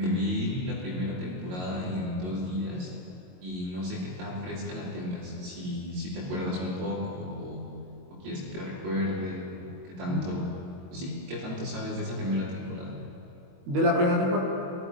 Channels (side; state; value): left; late; 22 ms